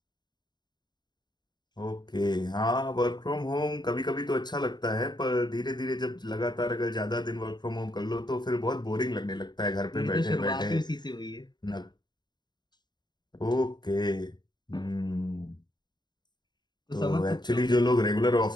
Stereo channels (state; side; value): late; right; 0.21 ms